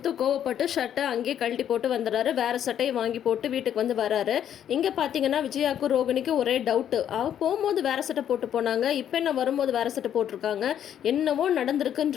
கோவப்பட்டு ஷர்ட்டை அங்கேயே கழட்டி போட்டு வந்துடுறாரு. வேறு சட்டையை வாங்கி போட்டு வீட்டுக்கு வந்து வராரு. இங்கே பார்த்தீங்கன்னா விஜயாவுக்கும் ரோகிணிக்கும் ஒரே டவுட்டு. அவள் போகும்போது வேறு சட்டை போட்டு போனாங்க, இப்போ என்ன வரும்போது வேறு சட்டை போட்டிருக்காங்க, என்னவோ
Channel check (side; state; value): right; quieter; 9.9 dB